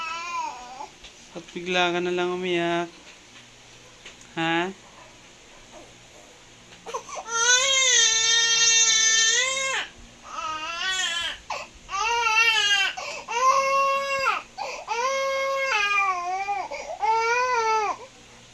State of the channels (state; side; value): identical; both; correlation 1.00